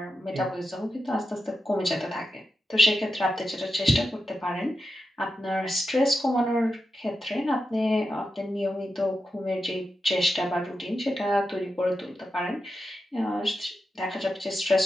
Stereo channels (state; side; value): normal; both; correlation 0.89